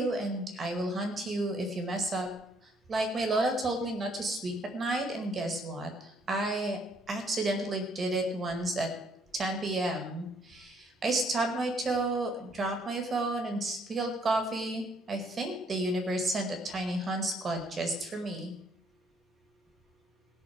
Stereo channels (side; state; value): both; normal; correlation 0.67